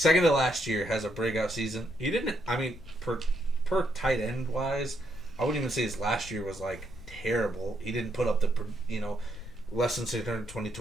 to last year has a breakout season. He didn't. I mean, per tight end wise, I wouldn't even say his last year was terrible. He didn't put up the less than 620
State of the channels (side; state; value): left; noise; rumble, 15 dB below the sound